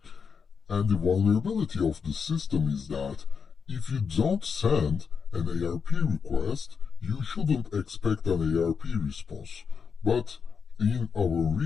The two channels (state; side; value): quieter; right; 6.0 dB